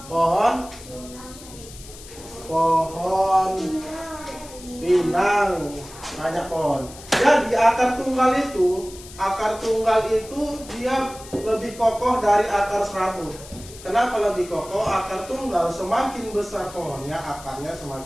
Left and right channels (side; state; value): left; noise; hiss, 17 dB below the sound